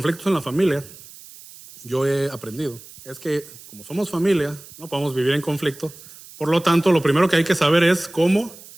en la familia, yo he aprendido, es que como somos familia, no podemos vivir en conflicto. Por lo tanto, lo primero que hay que saber es cómo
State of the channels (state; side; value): noise; right; hiss, 19 dB below the sound